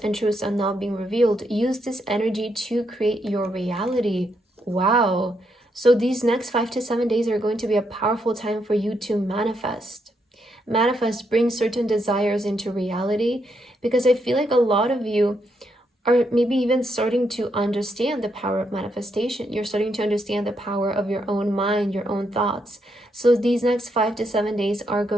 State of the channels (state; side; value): normal; both; correlation 0.78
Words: truths are now being revealed. Use this energy to create your reality. Wow. So these next 5 to 7 days are going to be a powerful time for you to manifest. Bring certain desires into reality, because I feel like a lot of you are maybe even starting to understand the power of manifestation. You're starting to understand the power of your own mind, your own thoughts. So these next 5 to 7 days are